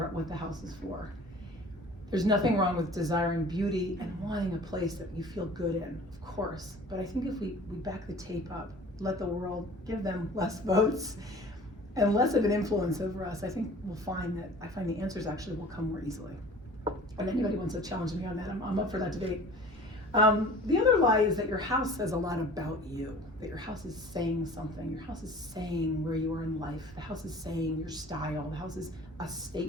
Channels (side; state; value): both; normal; correlation 0.45